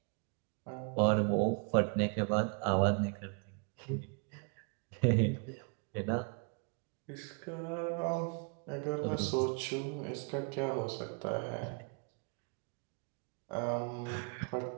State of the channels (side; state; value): left; quieter; 36.3 dB